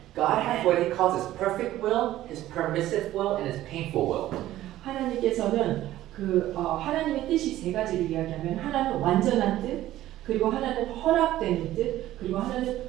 God has what He calls His perfect will, His permissive will, and His painful will. 하나님께서는 하나님의 뜻이 세 가지를 이야기하면 하나는 완전한 뜻, 그리고 하나는 허락되는 뜻, 그리고 하나는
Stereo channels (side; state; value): left; quieter; 14.3 dB